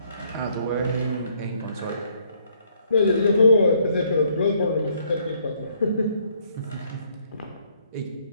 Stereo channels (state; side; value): inverted; both; correlation -0.68